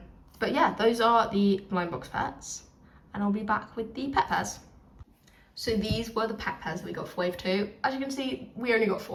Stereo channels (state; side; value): identical; both; correlation 1.00